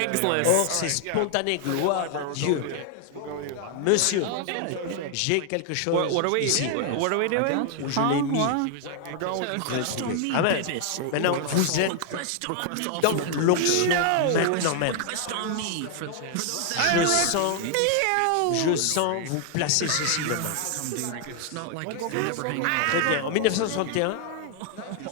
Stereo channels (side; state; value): both; different; correlation 0.00